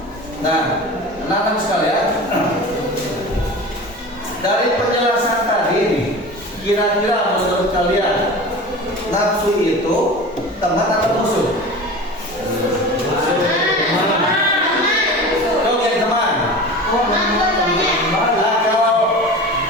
Nah, anak-anak sekalian, dari penjelasan tadi nih, kira-kira menurut kalian nafsu itu teman atau musuh? Oke, teman. Nah, kalau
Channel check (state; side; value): normal; both; correlation 0.34